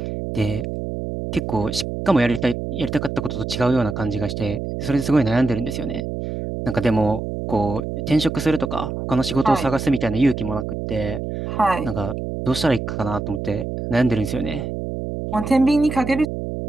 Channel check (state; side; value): noise; right; hum, 5 dB below the sound